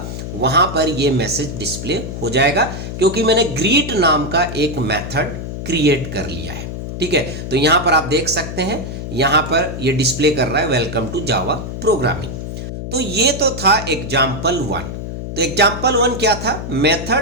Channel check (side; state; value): left; noise; hum, 7 dB below the sound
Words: वहां पर ये मैसेज डिस्प्ले हो जाएगा, क्योंकि मैंने ग्रीट नाम का एक मेथड क्रिएट कर लिया है, ठीक है। तो यहां पर आप देख सकते हैं यहां पर ये डिस्प्ले कर रहा है वेलकम टू जावा प्रोग्रामिंग। तो ये तो था एग्जाम्पल 1। तो एग्जाम्पल 1 क्या था,